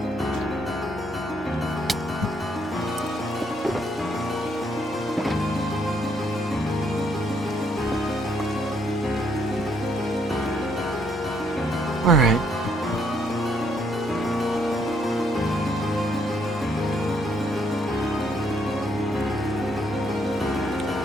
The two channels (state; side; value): normal; both; correlation 0.70